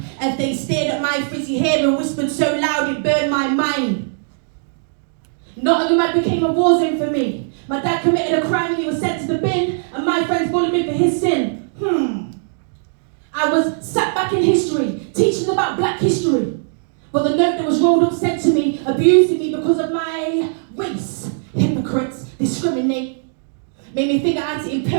As they stared at my frizzy hair and whispered so loud it burned my mind. Nottingham became a war zone for me. My dad committed a crime and he was sent to the bin, and my friends bullied me for his sin. I was sat back in history, teaching about black history. But the note that was rolled up said to me, abusing me because of my race. Hypocrites discriminate. Made me think I had to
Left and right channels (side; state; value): left; silent; digital silence